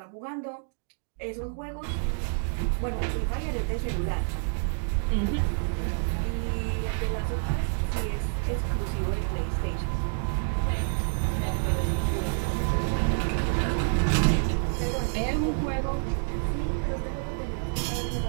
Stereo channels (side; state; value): left; silent; 59 dB below the other